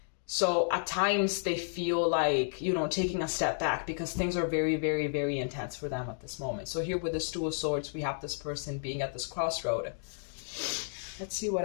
So at times they feel like, you know, taking a step back because things are very, very, very intense for them at this moment. So here with the Two of Swords, we have this person being at this crossroad. Let's see what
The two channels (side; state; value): right; silent; digital silence